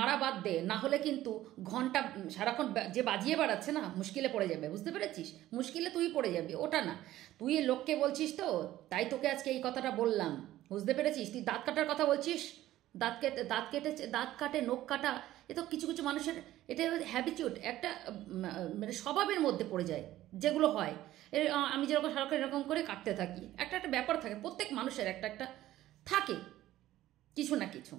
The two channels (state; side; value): quieter; left; 14.5 dB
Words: বাদ দে, না হলে কিন্তু ঘন্টা সারাক্ষণ যে বাজিয়ে বেড়াচ্ছে না, মুশকিলে পড়ে যাবে। বুঝতে পেরেছিস? মুশকিলে তুই পড়ে যাবি, ওটা না। তুই লোককে বলছিস তো, তাই তোকে আজকে এই কথাটা বললাম। বুঝতে পেরেছিস? তুই দাঁত কাটার কথা বলছিস, দাঁত কাটে নখ কাটা, এ তো কিছু কিছু মানুষের এটা হ্যাবিচুড, একটা স্বভাবের মধ্যে পড়ে যায়, যেগুলো হয়। আমি যেরকম সারাক্ষণ এরকম করে কাটতে থাকি, একটা ব্যাপার থাকে, প্রত্যেক মানুষের একটা থাকে কিছু না কিছু।